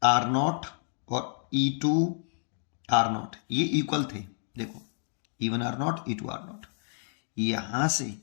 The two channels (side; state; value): right; silent; 56 dB below the other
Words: आर नॉट और E2 आर नॉट, ये इक्वल थे। देखो E1 are not E2 r not, यहां से